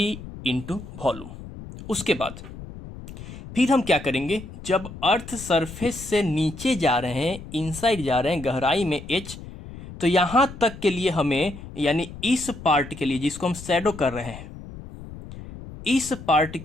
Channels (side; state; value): left; noise; rumble, 13 dB below the sound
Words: इंटू वॉल्यूम। उसके बाद फिर हम क्या करेंगे, जब अर्थ सरफेस से नीचे जा रहे हैं, इनसाइड जा रहे हैं, गहराई में एच, तो यहां तक के लिए हमें, यानी इस पार्ट के लिए जिसको हम शैडो कर रहे हैं, इस पार्ट